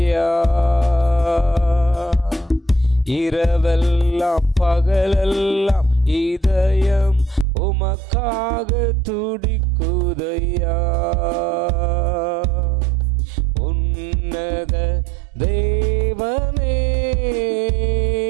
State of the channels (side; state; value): left; drops out; at 7.5 s